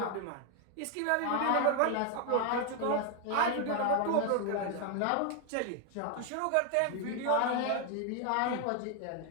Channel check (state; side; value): different; both; correlation 0.01